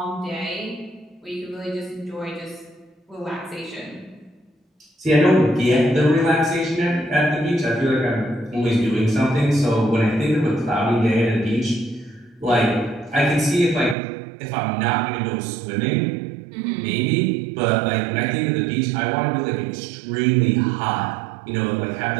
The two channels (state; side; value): drops out; left; at 14.0 s